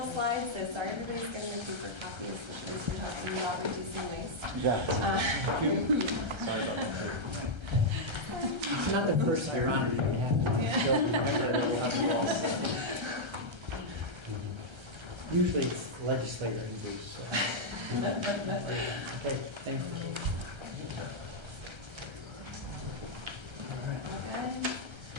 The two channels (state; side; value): late; left; 1.3 ms